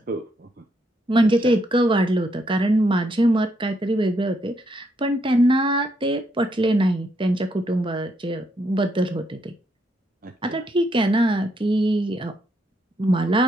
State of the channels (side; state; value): both; normal; correlation 0.76